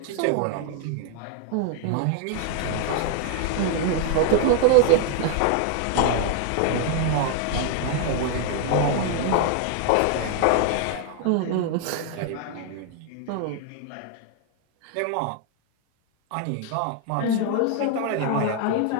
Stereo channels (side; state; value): both; different; correlation 0.00